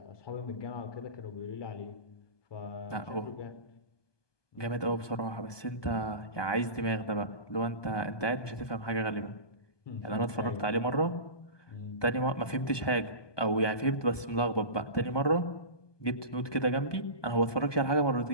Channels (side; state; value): right; late; 1.2 ms